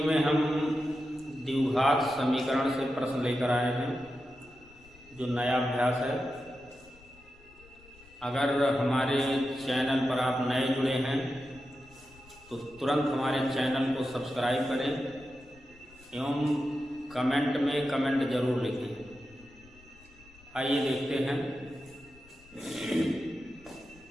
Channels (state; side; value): noise; left; rumble, 25 dB below the sound